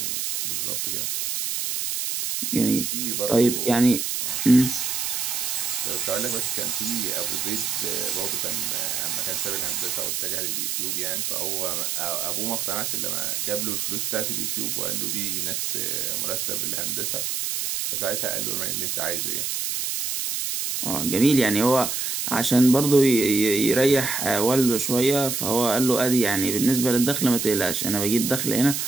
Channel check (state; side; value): noise; right; hiss, 1 dB below the sound